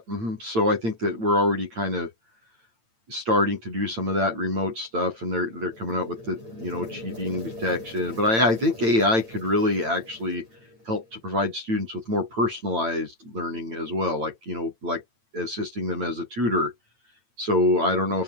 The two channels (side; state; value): left; late; 8.9 ms